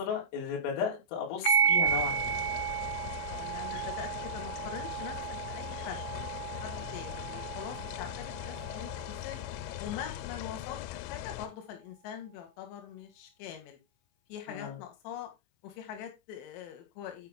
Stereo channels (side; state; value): right; late; 23 ms